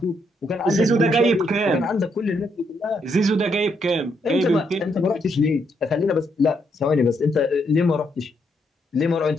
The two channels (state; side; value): normal; both; correlation 0.76